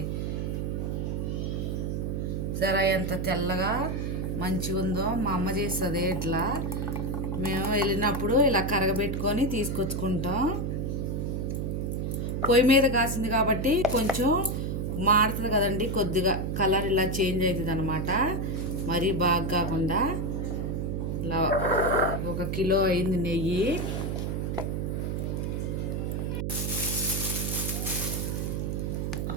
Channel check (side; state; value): right; noise; hum, 1 dB below the sound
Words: సరే, ఎంత తెల్లగా మంచిగా ఉందో మా అమ్మ చేస్తుంది. ఇట్లా మేము వెళ్ళినప్పుడు ఇలా కరగబెట్టుకొని తీసుకొచ్చుకుంటాం. పొయ్యి మీద కాసింది కాబట్టి కొంచెం మారుతుంది కదండి, కొద్దిగా కలర్ ఇలా చేంజ్ అవుతుంది అనమాట. మరీ బాగా కాకుండా ఇలా 1 కిలో అయింది నెయ్యి.